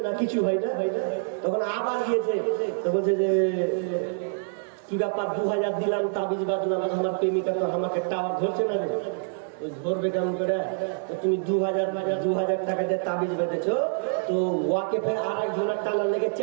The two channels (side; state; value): left; silent; digital silence